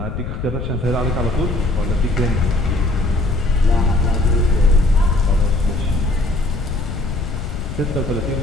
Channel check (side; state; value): left; noise; rumble, 6 dB below the sound